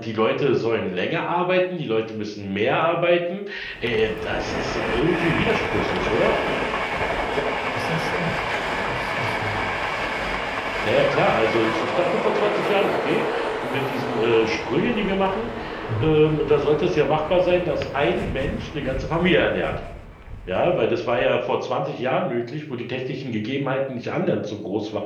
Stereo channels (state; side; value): identical; both; correlation 1.00